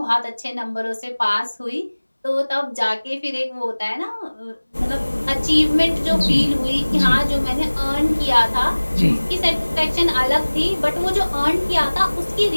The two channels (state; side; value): inverted; both; correlation -1.00